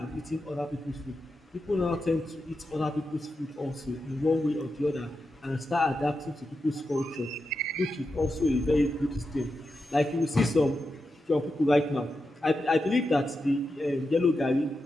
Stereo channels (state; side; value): normal; both; correlation 0.88